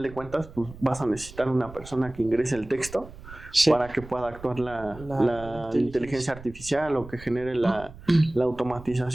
de cuentas, pues vas a necesitar una persona que ingrese el texto Sí. para que pueda actuar la inteligencia artificial o que genere la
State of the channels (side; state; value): right; noise; rumble, 17 dB below the sound